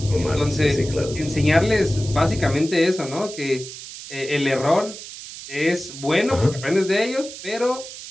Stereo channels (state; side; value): noise; right; hiss, 13 dB below the sound